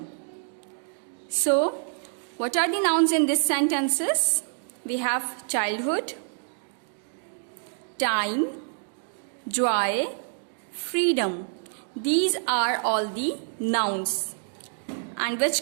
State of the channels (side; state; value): left; silent; digital silence